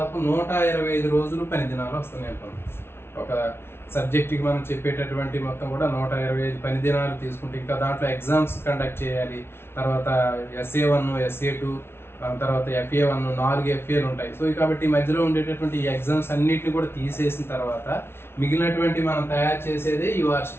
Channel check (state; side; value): late; right; 0.12 ms